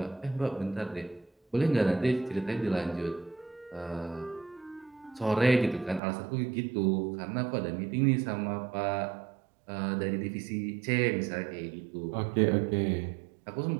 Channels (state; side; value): drops out; left; at 6.0 s